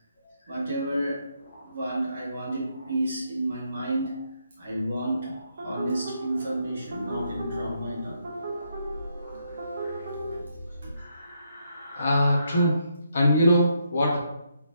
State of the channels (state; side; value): inverted; both; correlation -0.77